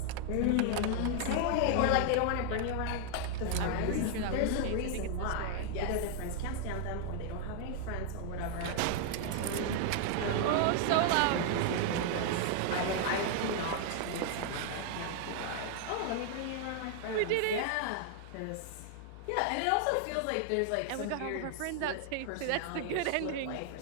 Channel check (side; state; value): both; different; correlation 0.00